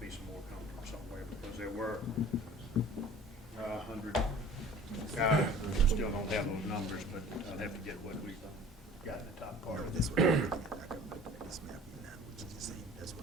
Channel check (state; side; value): normal; both; correlation 0.46